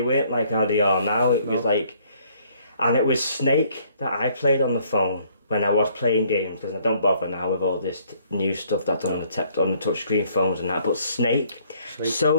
like how they are now. It was like, and it was Snake that I played on the phone. When I was playing games, because I don't bother now with all this new stuff that's on the touchscreen phones and that. But Snake.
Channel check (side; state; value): both; inverted; correlation -0.63